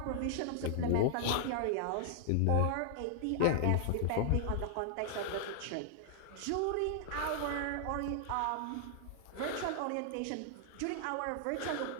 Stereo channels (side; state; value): both; different; correlation 0.00